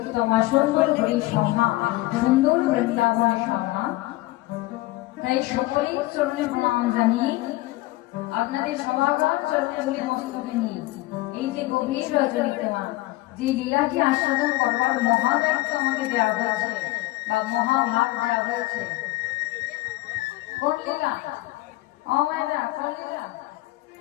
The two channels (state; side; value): quieter; right; 18.9 dB